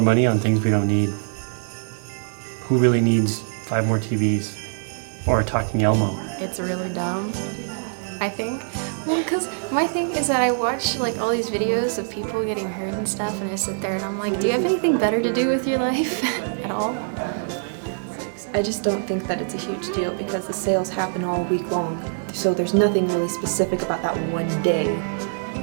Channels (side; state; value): left; silent; 63 dB below the other